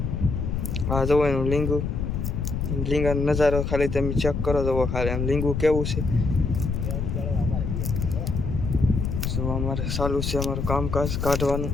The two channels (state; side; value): noise; left; rumble, 2 dB below the sound